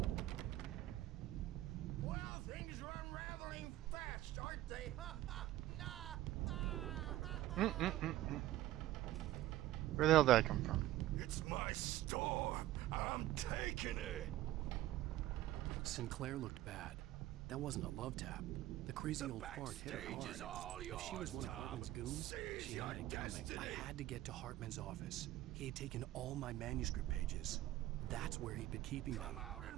Well, things are unraveling fast, aren't they? Where the hell did I come from? It's my storm. I'm taking it. Sinclair looked bad. That wasn't a love tap. The crazy old fart hit her backstage is hard. all If she was yours, one of Tom. Hartman's goons, Seize she your had it coming. destiny. I had to get to Hartman's office. He had taken all my manuscript pages. That's where he'd been keeping them. Come out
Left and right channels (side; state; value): left; quieter; 15.0 dB